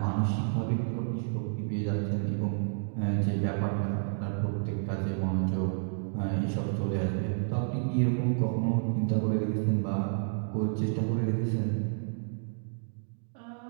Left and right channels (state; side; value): silent; left; digital silence